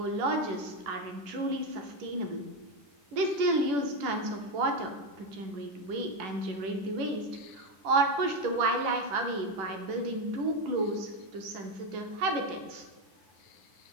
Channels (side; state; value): left; late; 10 ms